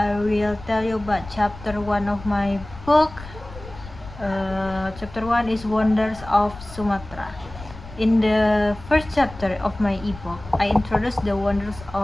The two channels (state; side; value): noise; left; rumble, 16 dB below the sound